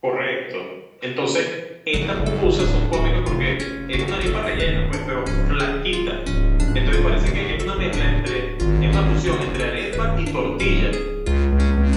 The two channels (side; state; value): both; identical; correlation 1.00